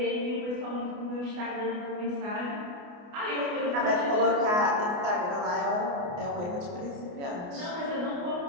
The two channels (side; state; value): left; late; 29 ms